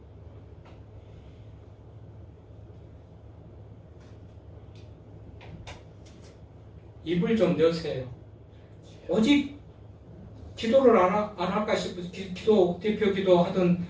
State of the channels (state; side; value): identical; both; correlation 1.00